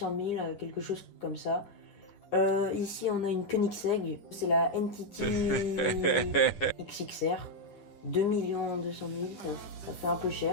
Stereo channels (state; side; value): late; right; 9.9 ms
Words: 000, quelque chose comme ça. Ici, on a une Koenigsegg, c'est la NTT XXR, 2 200 000, ça fait un peu